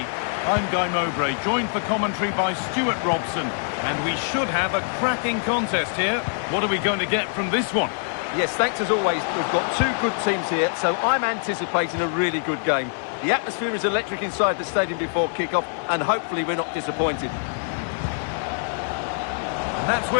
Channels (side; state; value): right; silent; 58 dB below the other